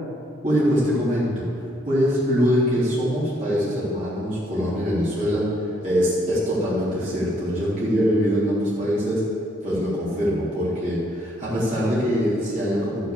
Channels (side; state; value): both; normal; correlation 0.70